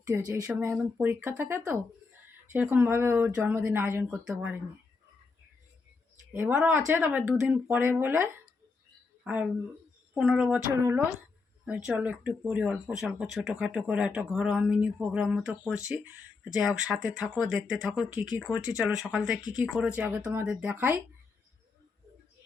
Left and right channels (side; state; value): right; quieter; 4.3 dB